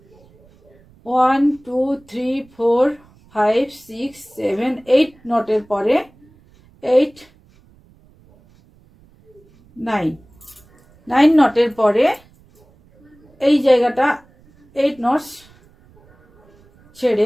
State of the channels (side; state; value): right; noise; rumble, 30 dB below the sound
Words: 1 2 3 4 5 6 7 8 নটের পরে 8 9 নটের পরে এই জায়গাটা 8 নটস